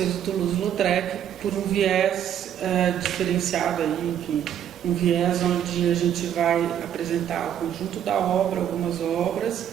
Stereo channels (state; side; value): quieter; left; 9.9 dB